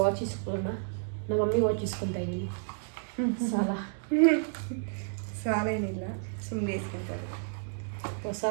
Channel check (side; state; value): left; silent; digital silence